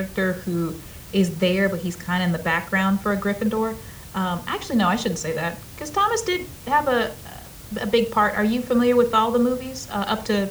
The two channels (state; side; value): identical; both; correlation 1.00